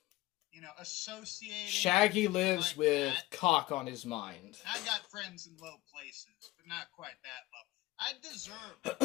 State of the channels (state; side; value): quieter; right; 18.4 dB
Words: Associated. Shaggy lives like with that. cock on his mind. I got friends in low places, but not quite that low. I deserve a